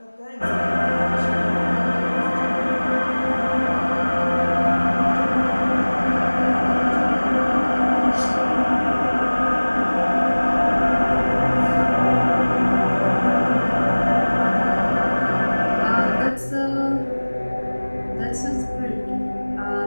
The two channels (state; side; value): inverted; both; correlation -1.00